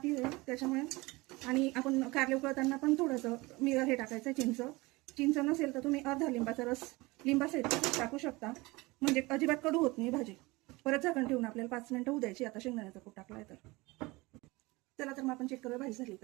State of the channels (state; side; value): quieter; left; 22.8 dB